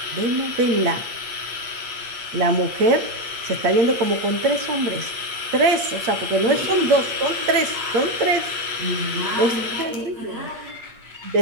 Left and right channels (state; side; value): late; left; 8.5 ms